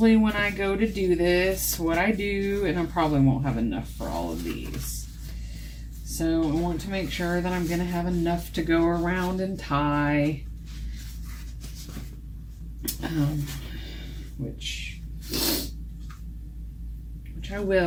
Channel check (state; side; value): identical; both; correlation 1.00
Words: when I go to do this, what I do, and I probably won't have enough for all of these. So I want to make sure that I'm going to have enough to go around and tie. Which I